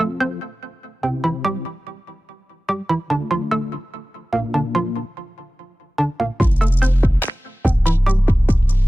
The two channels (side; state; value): both; normal; correlation 0.96